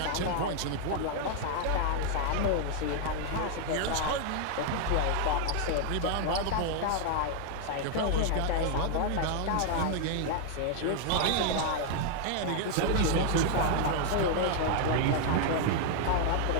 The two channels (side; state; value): both; different; correlation 0.00